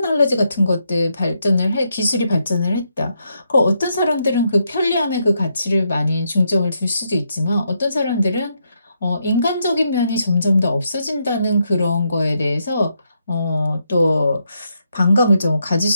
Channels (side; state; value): both; inverted; correlation -0.79